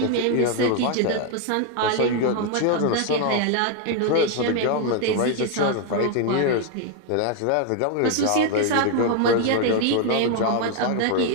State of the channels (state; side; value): different; both; correlation 0.00